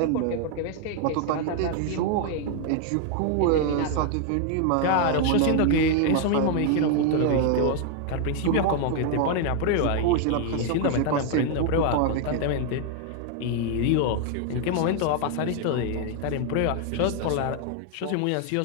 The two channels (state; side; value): different; both; correlation 0.00